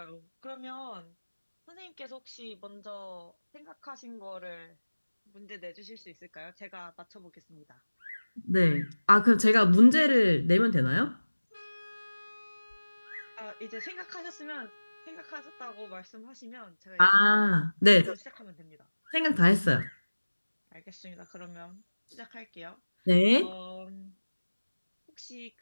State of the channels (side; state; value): both; inverted; correlation -1.00